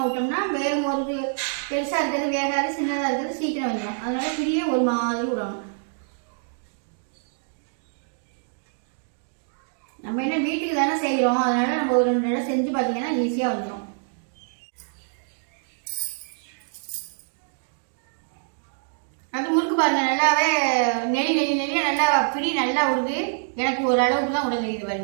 விட்டோம்னா வேறு ஒரு பெருசாக இருக்கிறது வேகாது, சின்னதாக இருக்கிறது சீக்கிரம் வந்துடும். அதனால பிரியை ஒரு மாதிரி விடணும். நம்ம என்ன வீட்டுக்கு தானே செய்கிறோம், அதனால நம்ம ஒரு 2 நடம் செஞ்சு பார்த்தீங்கன்னா ஈஸியாக வந்துடும். அது முறுக்கு பாருங்க, நல்லாவே நெளியாக நல்லா பிடி நல்லா விடுது. எனக்கு ஒரு அளவுக்கு தான் விட தெரியுது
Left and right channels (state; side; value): silent; left; digital silence